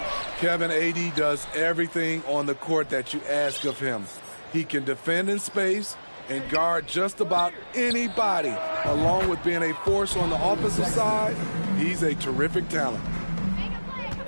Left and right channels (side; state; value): both; inverted; correlation -1.00